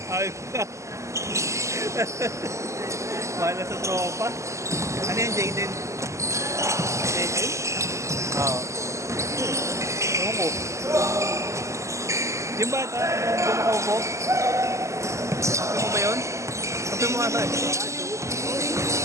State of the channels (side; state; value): left; late; 0.14 ms